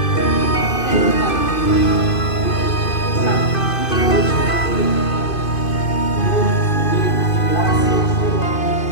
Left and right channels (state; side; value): late; right; 2.5 ms